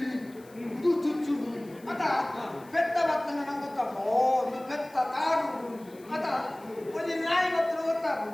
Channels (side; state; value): left; noise; hiss, 26 dB below the sound